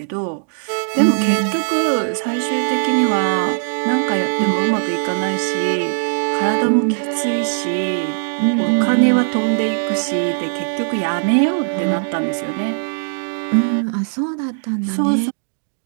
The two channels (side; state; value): left; silent; digital silence